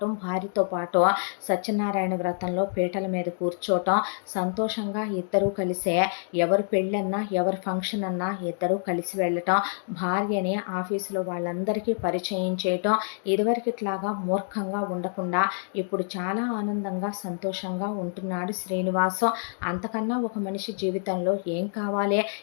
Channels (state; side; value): silent; right; digital silence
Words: భార్యతో పాటు సత్యనారాయణ వ్రతంలో పీటల మీద కూర్చోవటం, సంతోషంగా ఇద్దరూ కలిసే ఎవరు పెళ్ళన్నా ఎవరి ఫంక్షన్ అన్నా ఇద్దరూ కలిసి వెళ్ళటం, భార్యని ఆఫీసులో వాళ్ళందరికీ పరిచయం చేయటం, ఇదివరకిట్లాగా మూర్ఖంగా ఉండకుండా ఇప్పుడు చాలా ఆనందంగా సంతోషంగా ఉంటున్నాడు శ్రీనివాసం. అంతకన్నా ఒక మనిషి జీవితంలో ఏం కావాలి?